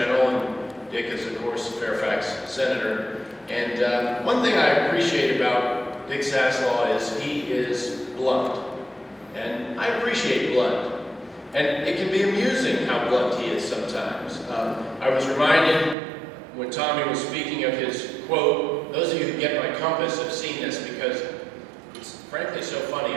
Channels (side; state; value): left; drops out; at 16.0 s